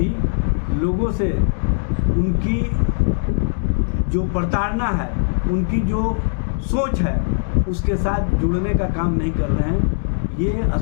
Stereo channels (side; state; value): right; silent; digital silence